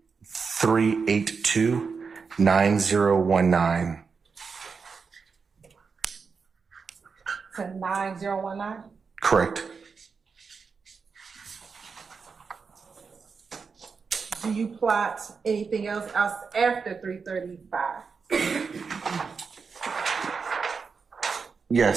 To 9019? Correct. Do you plot anything else after 335?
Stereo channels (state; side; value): quieter; left; 5.3 dB